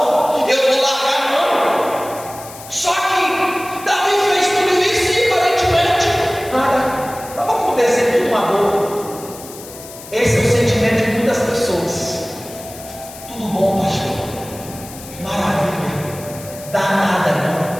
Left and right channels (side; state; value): left; noise; hiss, 16 dB below the sound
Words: eu vou largar a mão. Só que Davi fez tudo isso e aparentemente nada estava acontecendo, tudo uma boa. Esse é o sentimento de muitas pessoas. Tudo bom, pastor? Maravilha. Dá nada